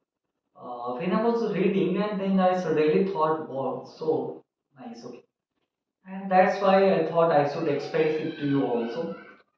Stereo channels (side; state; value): both; identical; correlation 1.00